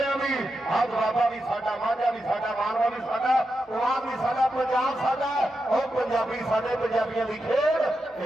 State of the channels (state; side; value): normal; both; correlation 0.88